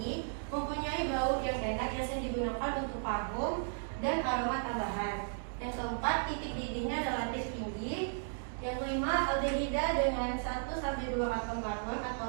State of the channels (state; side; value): silent; left; digital silence